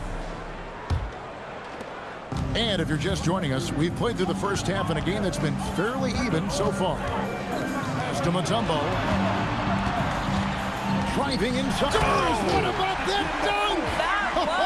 And if you're just joining us, we've played through the first half in a game that's been fairly even so far. As to Mutombo. Driving inside. What about that dunk? That was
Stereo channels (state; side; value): identical; both; correlation 1.00